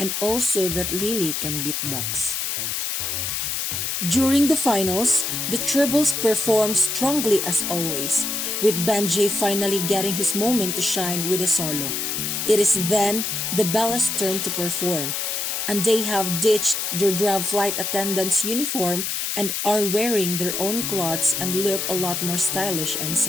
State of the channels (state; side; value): noise; left; hiss, 1 dB below the sound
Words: also that Lily can beatbox. During the finals, the tribbles perform strongly as always, with Benji finally getting his moment to shine with a solo. It is then the Bellas' turn to perform, and they have ditched their draft flight attendant's uniform and are wearing their own clothes and look a lot more stylish and